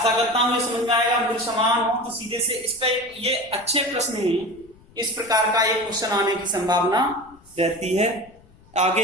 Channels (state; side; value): noise; left; rumble, 27 dB below the sound